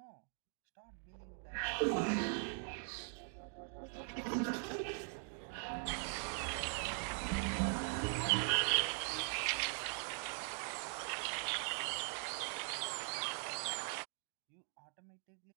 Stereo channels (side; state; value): left; silent; 50 dB below the other